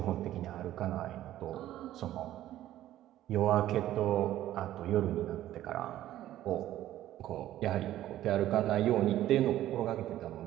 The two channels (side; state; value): left; quieter; 13.4 dB